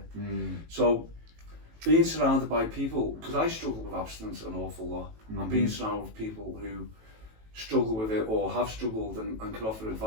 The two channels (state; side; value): late; left; 18 ms